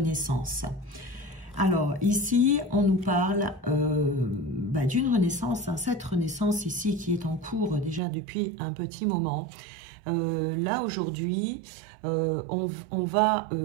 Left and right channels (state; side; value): drops out; left; at 8.0 s